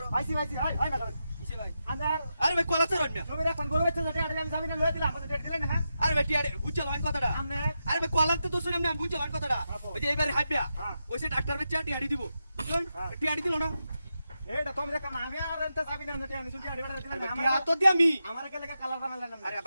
আইছি হয় না কিসে ভাই আন্দার আরে ভাই কলা চড়ন না তুমি এখন গরু বাচ্চা যেটা আমি জামিনে লয়ে দিলাম আমাদের দিলেন না আরে ভাই টিয়াডি বুঝছো লাইন কথাটা আমনে আরে ভাই কলা তো শুনে আমি বুঝছো লাইন কথাটা ওই যে এবারে হাইপিয়া হ্যাঁ। ওইসে ডাক্তার বেচা টিয়াডি দিব বুঝলেন হ্যাঁ। টিয়াডি দিল না এইটা তুমি দেখো না আমি আর এনতে জামিনে আনতে আমি শুনছি আড়ি দিলাম না টিয়া তো দি আমি আমার কে লাগা কালার বানালেন না আরে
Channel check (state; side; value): inverted; both; correlation -0.88